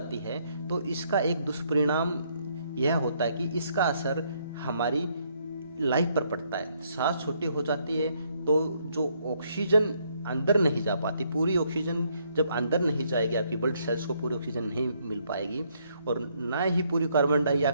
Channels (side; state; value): both; inverted; correlation -0.71